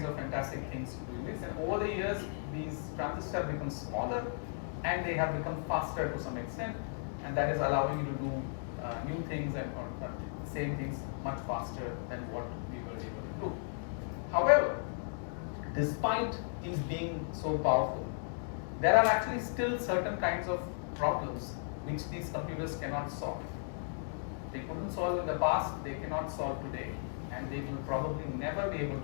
of fantastic things doing this. And over the years, these transistors have become smaller and they have become faster to some extent. And that is allowing you to do new things and same things much faster than what we were able to do. However, despite these being so powerful, there are actually still certain kinds of problems which these computers cannot solve. They couldn't solve in the past, they cannot solve today, and they will probably never be able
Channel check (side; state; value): right; silent; digital silence